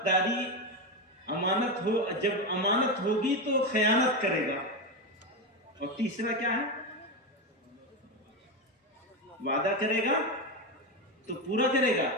جب امانت ہوگی تو خیانت کرے گا. اور تیسرا کیا ہے؟ وعدہ کرے گا تو پورا کرے گا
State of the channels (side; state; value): both; normal; correlation 0.14